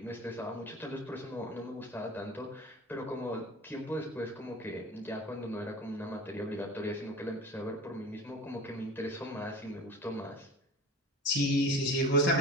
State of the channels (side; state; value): both; normal; correlation 0.38